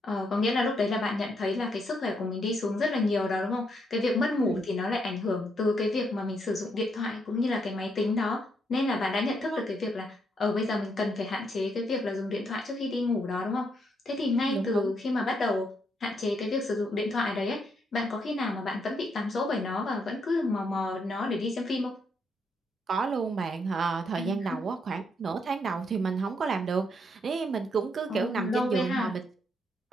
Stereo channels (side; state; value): both; normal; correlation 0.75